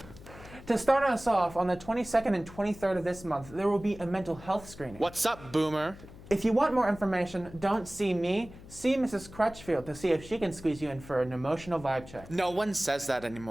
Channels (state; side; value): noise; left; hum, 18 dB below the sound